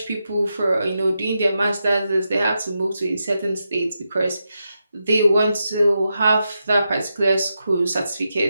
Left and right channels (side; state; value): both; inverted; correlation -0.86